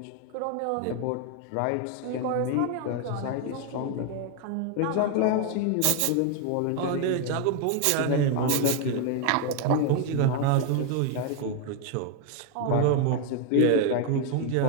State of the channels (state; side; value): different; both; correlation 0.01